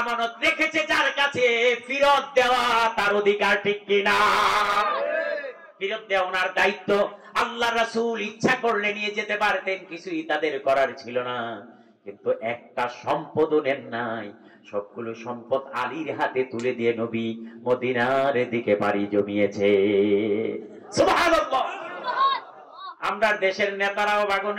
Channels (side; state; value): both; identical; correlation 1.00